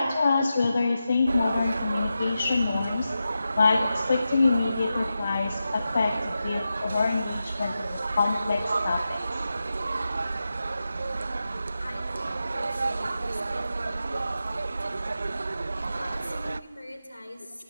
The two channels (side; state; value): both; inverted; correlation -0.91